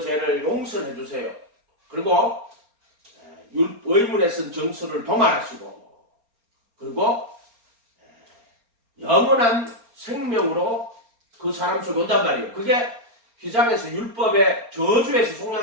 용서해 주세요. 그리고 의문에 쓴 정서를 도말하시고, 그리고 영원한 생명으로 그 사람 속에 온단 말이에요. 그게 휘장에서 율법의 저주에서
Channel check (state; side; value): late; left; 4.3 ms